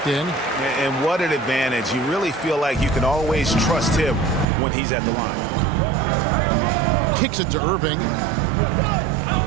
in. And what an advantage. You really feel like you can always trust him when he's at the line. Kicks it to Irving.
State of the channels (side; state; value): left; drops out; at 4.5 s